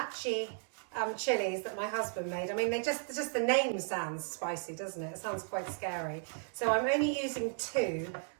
chilies that my husband made. I mean, just the name sounds spicy, doesn't it? It sounds quite scary. So I'm only using 2,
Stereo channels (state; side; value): silent; left; 54 dB below the other